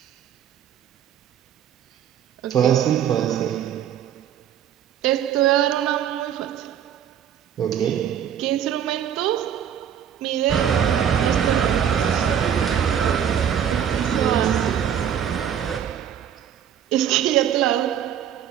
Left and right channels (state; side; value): quieter; left; 9.3 dB